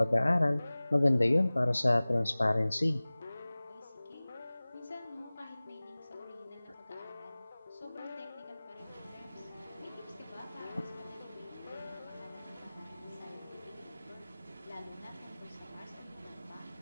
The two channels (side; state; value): both; inverted; correlation -0.99